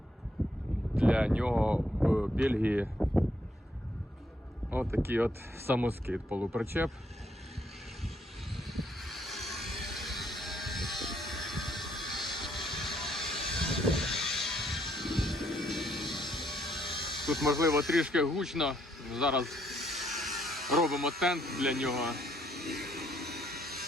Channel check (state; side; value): normal; both; correlation 0.71